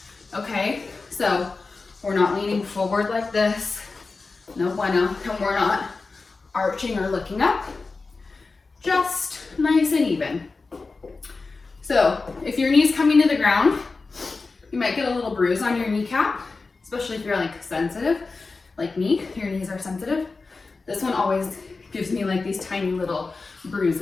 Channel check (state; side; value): quieter; right; 4.0 dB